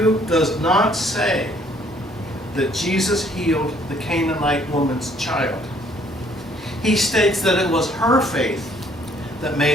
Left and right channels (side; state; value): both; normal; correlation 0.62